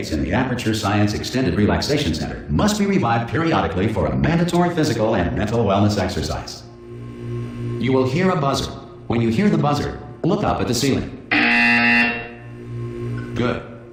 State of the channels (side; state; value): both; identical; correlation 1.00